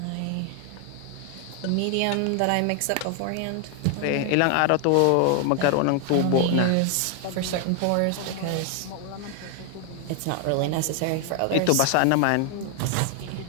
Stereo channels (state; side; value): different; both; correlation 0.00